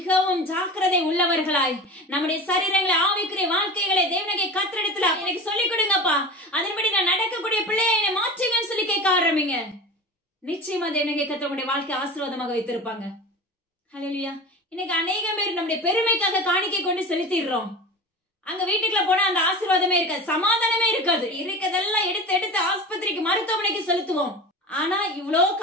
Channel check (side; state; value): both; normal; correlation 0.32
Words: ஜாக்கிரதை உள்ளவர்களாய் நம்முடைய சரீரங்களை ஆவிக்குரிய வாழ்க்கைகளை தேவனாகிய கர்த்தரிடத்துல எனக்கு சொல்லிக் கொடுங்கப்பா, அதன்படி நான் நடக்கக்கூடிய பிள்ளையை என்னை மாற்றுங்கன்னு சொல்லி கேட்க ஆரம்பிங்க. நிச்சயமா தேவனாகிய கர்த்தர் உங்களுடைய வாழ்க்கை ஆசீர்வாதமாக வைத்திருப்பாங்க. ஹல்லேலூயா. இன்னைக்கு அநேக பேர் நம்முடைய பெருமைக்காக காணிக்கை கொண்டு செலுத்திடுறோம். அங்க வீட்டுக்குள்ள போனா அந்த ஆசீர்வாதமே இருக்காது, சமாதானமே இருக்காது. இருக்கதெல்லாம் எடுத்து ஆஸ்பத்திரிக்கு மருத்துவமனைக்கு செலுத்துவோம். ஆனா இவ்வளோ